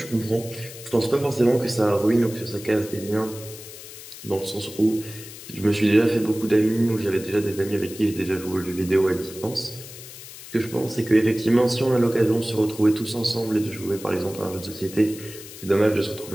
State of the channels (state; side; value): noise; left; hiss, 15 dB below the sound